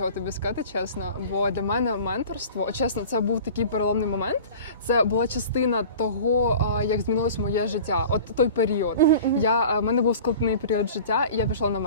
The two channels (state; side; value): inverted; both; correlation -0.41